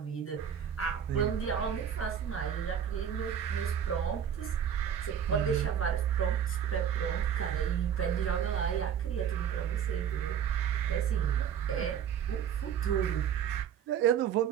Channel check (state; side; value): quieter; left; 8.6 dB